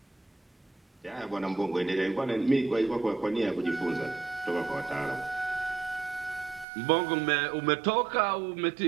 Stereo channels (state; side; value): drops out; left; at 6.7 s